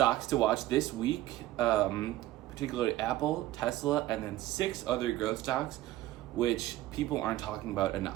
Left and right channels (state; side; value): quieter; left; 15.6 dB